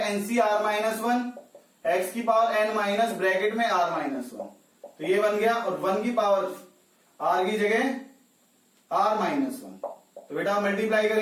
nC are minus one x की पावर एन माइनस ब्रैकेट में आर माइनस वन, तो ये बन गया, और वन की पावर आर की जगह आर माइनस वन, तो बेटा मल्टीप्लाई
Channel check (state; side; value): identical; both; correlation 1.00